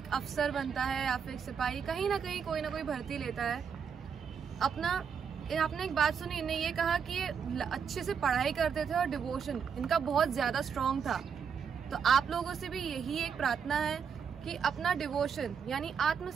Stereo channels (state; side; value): quieter; left; 6.8 dB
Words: अफसर बनता है या फिर सिपाही, कहीं ना कहीं कोई ना कोई भर्ती लेता है। आपने एक बात सुनी, इन्हें ये कहा कि ये अच्छे से पढ़ाई करते थे और डिवोशन इनका बहुत ज़्यादा स्ट्रॉन्ग था। तो आप लोगों से भी यही एक प्रार्थना है कि अपना डिवोशन यानी